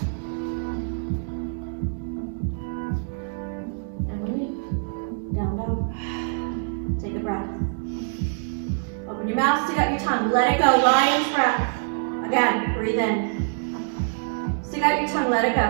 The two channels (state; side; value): silent; left; digital silence